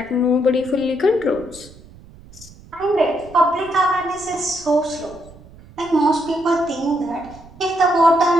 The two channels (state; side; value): noise; right; rumble, 21 dB below the sound